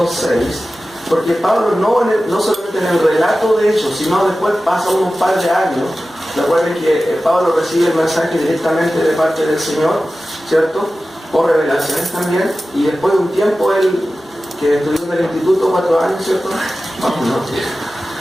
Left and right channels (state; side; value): normal; both; correlation 0.95